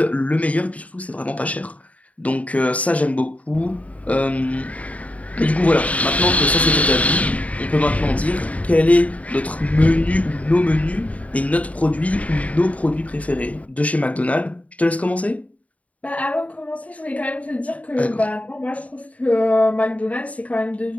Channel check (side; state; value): right; late; 0.068 ms